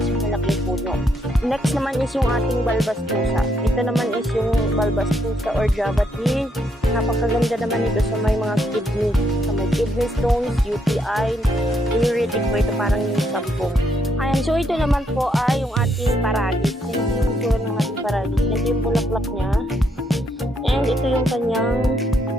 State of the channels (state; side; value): normal; both; correlation 0.75